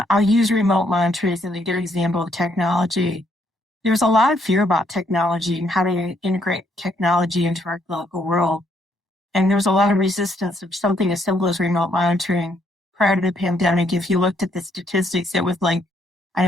I'll use remote monitoring as a good example of technology. There was a lot of fear about technology and how to integrate technology into our clinical world. And there was a lot of resistance of something as simple as remote monitoring. Prior to the pandemic, if you looked at the statistics, it was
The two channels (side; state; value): both; normal; correlation 0.71